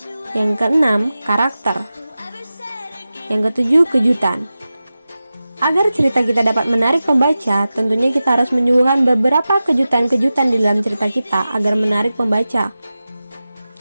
Yang keenam, karakter. Yang ketujuh, kejutan. Agar cerita kita dapat menarik pembaca, tentunya kita harus menyuguhkan beberapa kejutan-kejutan di dalam cerita kita agar menarik pembaca.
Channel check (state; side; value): inverted; both; correlation -0.95